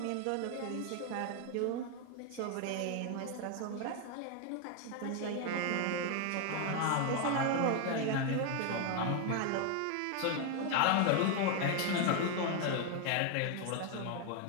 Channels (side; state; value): both; different; correlation 0.01